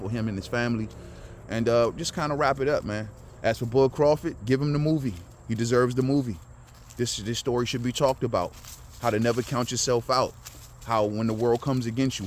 him and his family. And just kind of wrap it up, man. As for Bud Crawford, give him the movie. He deserves the movie. This story should be talked about. How to never count yourself out. How when the world comes against you,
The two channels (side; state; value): both; identical; correlation 1.00